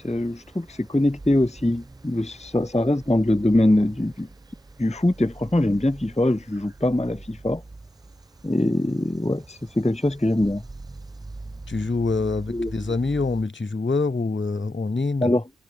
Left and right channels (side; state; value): both; normal; correlation 0.91